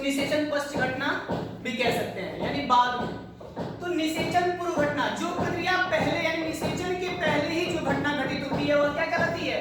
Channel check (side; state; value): both; identical; correlation 1.00